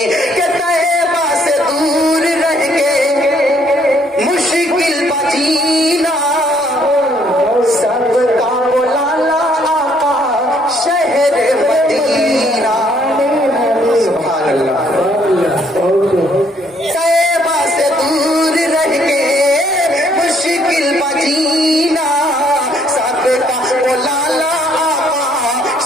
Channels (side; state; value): both; normal; correlation 0.67